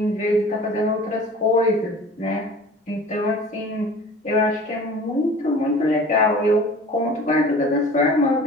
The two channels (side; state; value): both; normal; correlation 0.43